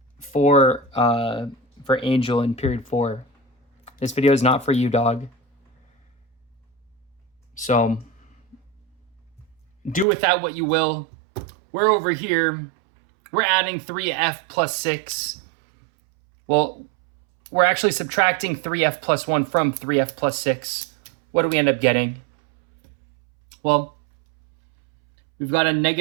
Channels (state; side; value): drops out; left; at 10.1 s